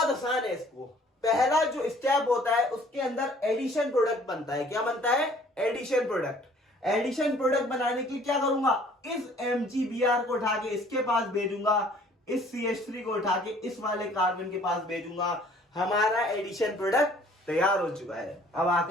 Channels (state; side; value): normal; both; correlation 0.56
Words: आसान है। इसको पहला जो स्टेप होता है उसके अंदर एडिशन प्रोडक्ट बनता है। क्या बनता है? Addition product. एडिशन प्रोडक्ट बनाने के लिए क्या करूंगा? इस MgBr को उठा के इसके पास भेजूंगा, इस CH3 को उठा के इस वाले कार्बन के पास भेजूंगा। हमारा एडिशन प्रोडक्ट तैयार हो चुका है। अब